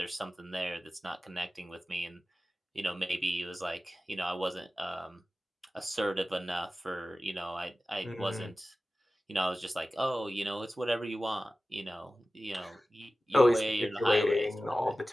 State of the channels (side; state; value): both; normal; correlation 0.96